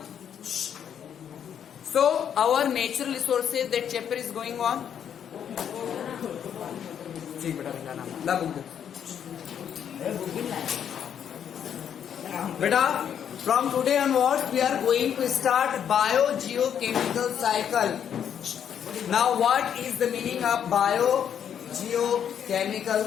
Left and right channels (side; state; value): right; quieter; 8.7 dB